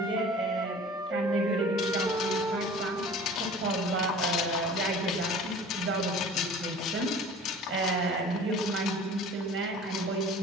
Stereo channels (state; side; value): normal; both; correlation 0.43